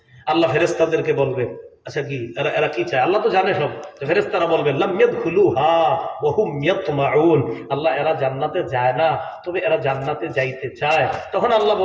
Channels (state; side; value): identical; both; correlation 1.00